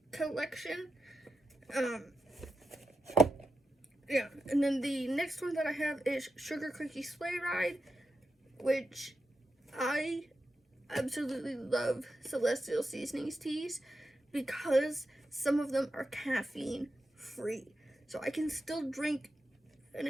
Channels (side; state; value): both; normal; correlation 0.89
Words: collection. Yeah, and then the next one that I have is Sugar Cookie Sleigh Ride, which I absolutely love Celestial Seasonings teas because some of them are caffeine free. So I can still drink and